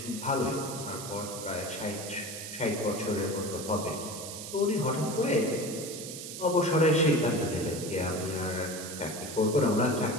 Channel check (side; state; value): right; noise; hiss, 9 dB below the sound